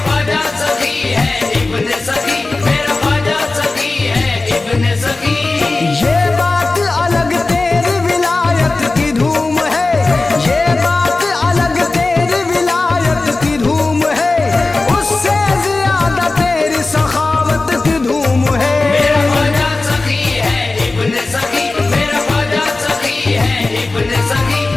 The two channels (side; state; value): right; quieter; 3.4 dB